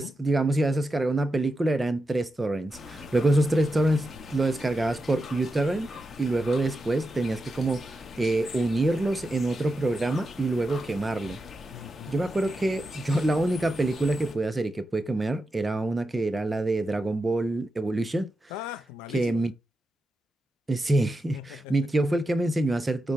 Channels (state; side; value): normal; both; correlation 0.88